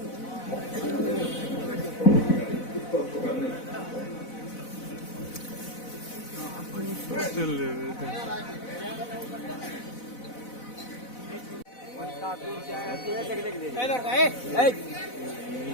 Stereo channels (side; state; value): right; late; 4.0 ms